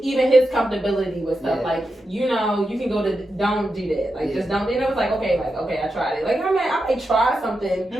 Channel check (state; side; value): normal; both; correlation 0.88